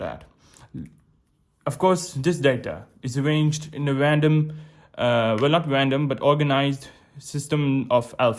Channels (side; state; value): both; identical; correlation 1.00